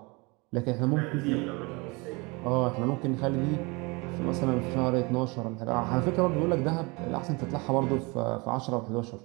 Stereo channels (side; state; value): left; quieter; 27.3 dB